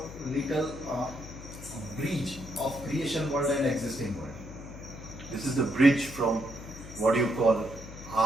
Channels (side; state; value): left; noise; hum, 13 dB below the sound